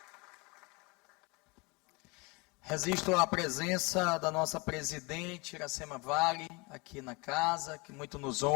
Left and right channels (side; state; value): right; quieter; 27.5 dB